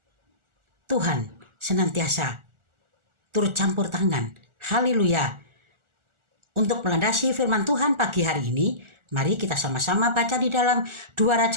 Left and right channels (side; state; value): left; late; 1.4 ms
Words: Tuhan senantiasa turut campur tangan. Haleluya. Untuk melandasi firman Tuhan pagi hari ini, mari kita sama-sama baca di dalam 2